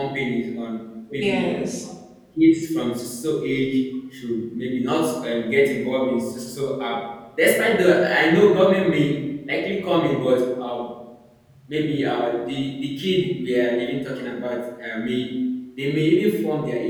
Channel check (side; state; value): both; identical; correlation 1.00